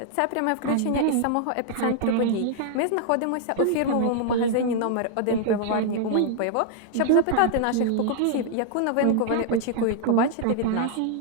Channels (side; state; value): both; different; correlation -0.01